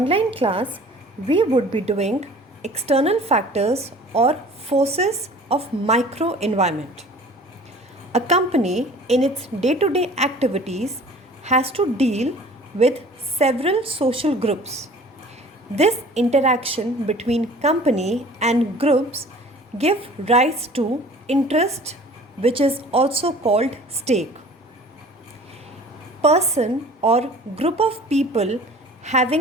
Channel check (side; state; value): both; normal; correlation 0.46